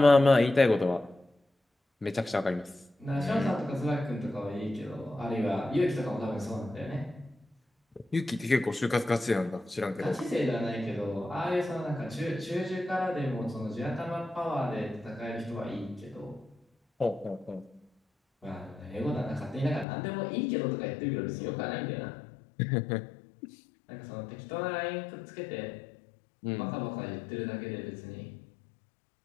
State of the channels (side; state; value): right; drops out; at 19.9 s